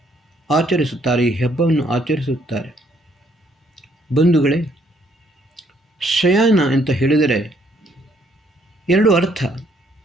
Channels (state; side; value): normal; both; correlation 0.67